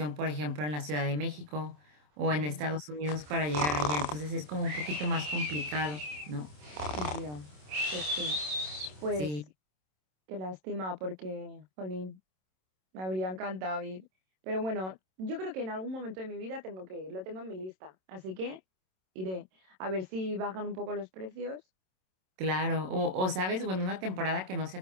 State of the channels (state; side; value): late; left; 27 ms